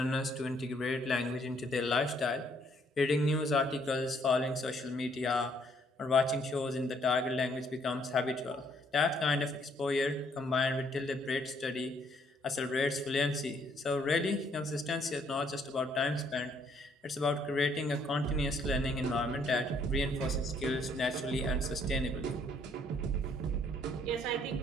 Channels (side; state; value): both; normal; correlation 0.67